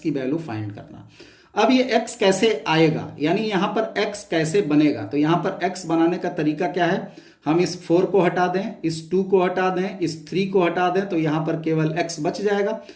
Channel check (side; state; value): both; identical; correlation 1.00